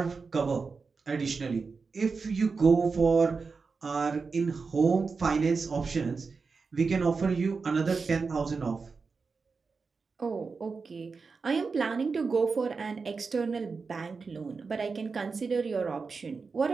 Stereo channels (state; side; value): quieter; left; 4.7 dB